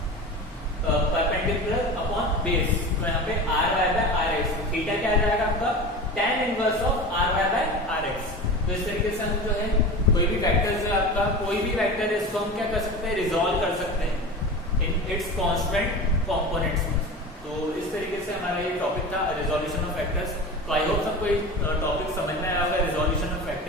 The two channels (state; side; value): normal; both; correlation 0.30